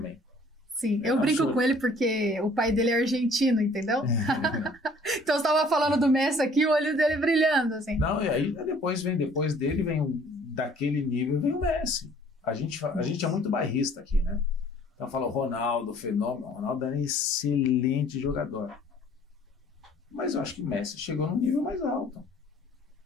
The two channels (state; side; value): normal; both; correlation 0.55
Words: Sim, eu brinco com ele porque o pai dele é argentino, entendeu? Então você estava falando do Messi aqui, o olho dele brilhando, assim. Não, e aí depois dele vem daquele nível, vem o Messi. A gente é muito bairrista aqui, né? Então fala o Ronaldo, o fenômeno. O Ronaldo era um excelente jogador. Mas eu acho que o Messi chegou num nível mais alto.